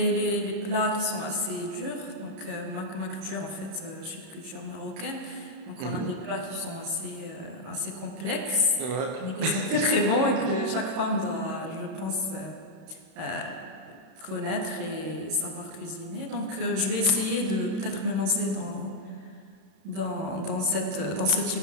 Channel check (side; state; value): left; late; 31 ms